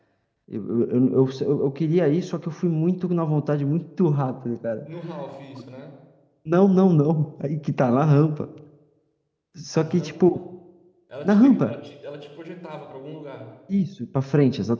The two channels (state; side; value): identical; both; correlation 1.00